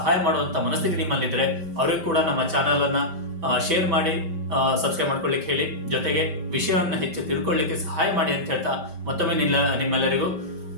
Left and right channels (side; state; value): left; late; 5.1 ms